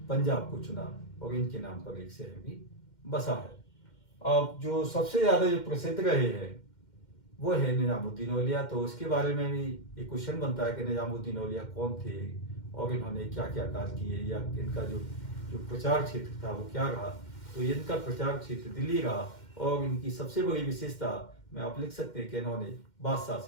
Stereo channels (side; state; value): right; late; 2.1 ms